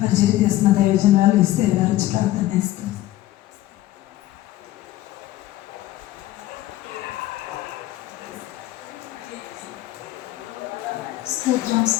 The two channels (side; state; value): right; quieter; 15.2 dB